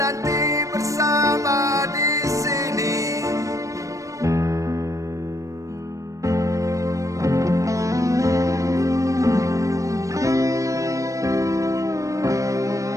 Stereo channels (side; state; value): left; late; 0.16 ms